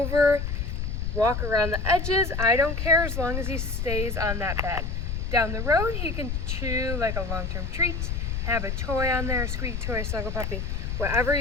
walk around the edges. I don't care as long as he stays on that bed. Down the road, he can chew like a long-term treat, have a toy on there, a squeaky toy, snuggle puppy. Whatever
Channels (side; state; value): left; noise; rumble, 2 dB below the sound